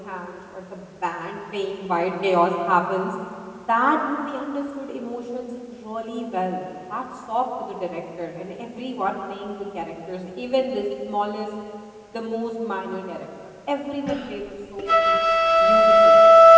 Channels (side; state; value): both; identical; correlation 1.00